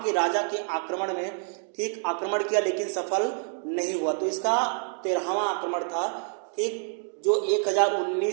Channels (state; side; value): silent; left; 58 dB below the other